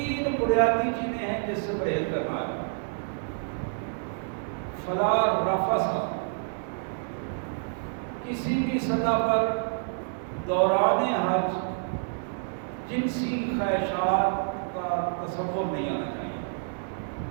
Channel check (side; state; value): left; silent; digital silence